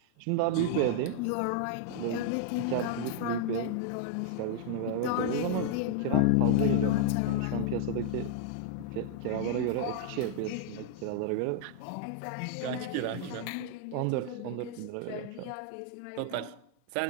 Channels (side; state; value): both; different; correlation -0.01